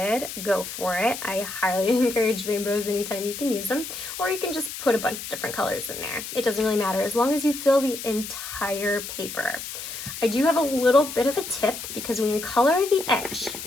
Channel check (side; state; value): left; noise; hiss, 8 dB below the sound